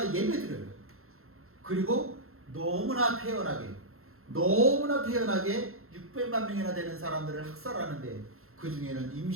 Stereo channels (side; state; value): left; late; 0.62 ms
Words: 예배 드려요. 그리고 너무나 태연하게 600만 명이나 되는 사람들을 학살하는데 그 중에는